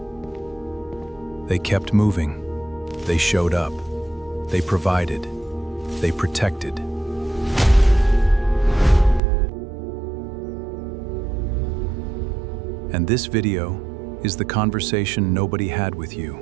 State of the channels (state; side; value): drops out; left; at 9.2 s